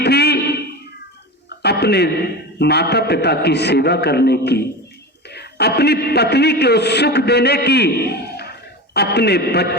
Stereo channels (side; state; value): both; normal; correlation 0.27